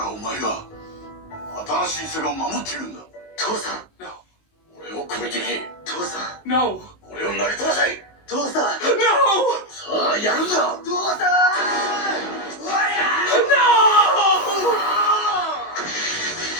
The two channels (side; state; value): right; late; 19 ms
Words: お前が新しいセガを守っていくんだ。父さん。No. 俺を超えてけ。父さん。No. 俺を投げ飛ばせ。父さん。No! さあ、やるんだ。父さん。No!